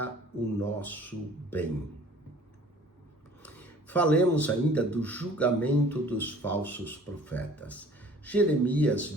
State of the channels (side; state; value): both; normal; correlation 0.51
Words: o nosso bem. Falemos ainda do julgamento dos falsos profetas. Jeremias